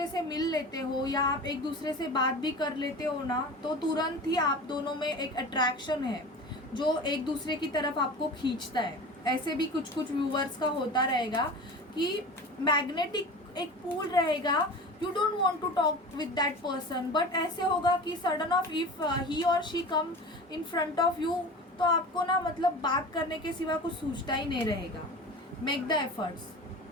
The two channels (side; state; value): both; normal; correlation 0.34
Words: से मिल लेते हो या आप एक दूसरे से बात भी कर लेते हो ना, तो तुरंत ही आप दोनों में एक अट्रैक्शन है जो एक दूसरे की तरफ आपको खींचता है। ऐसे भी कुछ कुछ व्यूवर्स का होता रहेगा कि मैग्नेटिक एक पुल रहेगा, you don't want to talk with that person, but ऐसे होगा कि सडन ऑफ इफ ही और she come in front of you, तो आपको ना मतलब बात करने के सिवा कुछ सूझता ही नहीं रहेगा। Make the efforts.